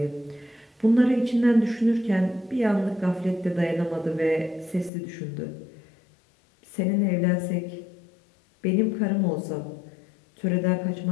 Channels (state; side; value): drops out; right; at 4.9 s